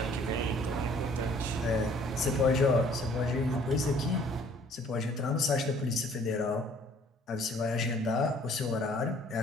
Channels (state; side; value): normal; both; correlation 0.57